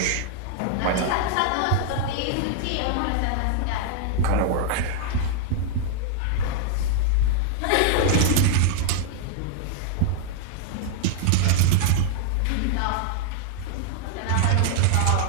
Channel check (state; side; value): different; both; correlation 0.00